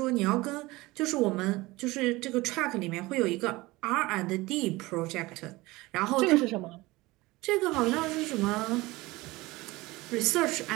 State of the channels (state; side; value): quieter; left; 20.8 dB